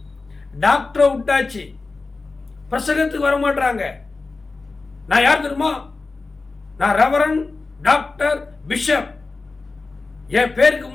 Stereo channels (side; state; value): right; quieter; 3.8 dB